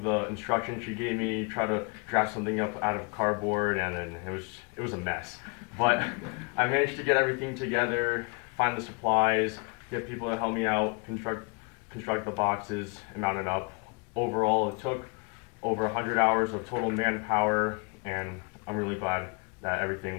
the instructions she gave me, try to draft something up out of cardboard, and then it was a mess. But I managed to get everything together, find the supplies, get people to help me out, construct the boxes, and mount it up. Overall, it took over 100 hours of total manpower, and I'm really glad that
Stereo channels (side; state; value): right; quieter; 33.5 dB